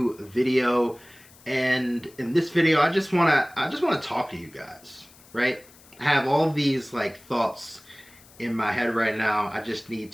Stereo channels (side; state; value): left; noise; hiss, 25 dB below the sound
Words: video, and in this video I just want to talk to you guys, right? I have all these thoughts in my head right now. I just need